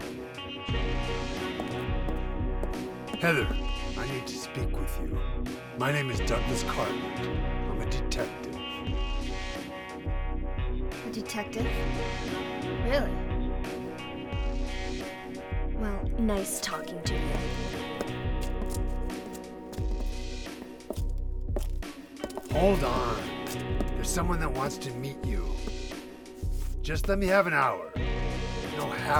Heather, I need to speak with you. My name is Douglas Cartland. I'm a detective. A detective? Really? Well, nice talking to you. Hold on. There's someone that wants to meet you. Just let me have an hour. No,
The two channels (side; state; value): both; identical; correlation 1.00